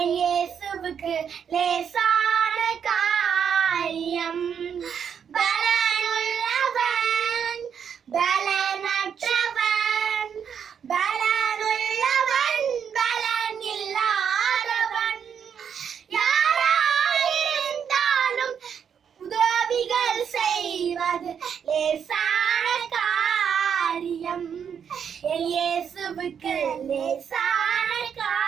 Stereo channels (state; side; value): quieter; left; 7.7 dB